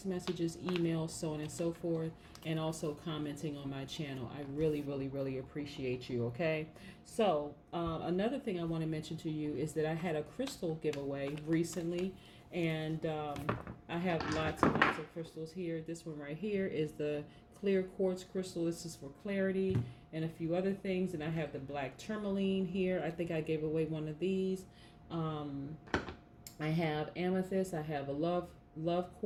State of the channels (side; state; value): both; identical; correlation 1.00